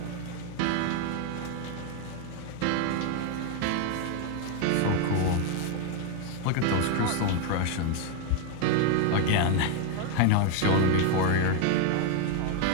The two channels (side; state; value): both; different; correlation 0.01